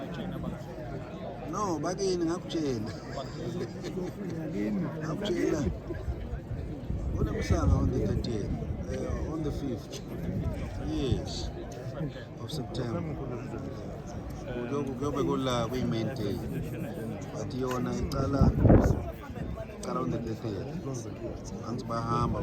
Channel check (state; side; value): identical; both; correlation 1.00